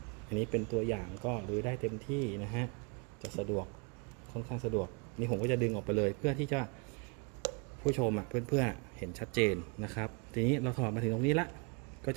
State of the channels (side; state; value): left; quieter; 32.8 dB